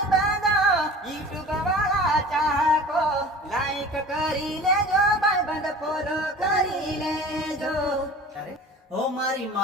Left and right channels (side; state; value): both; normal; correlation 0.41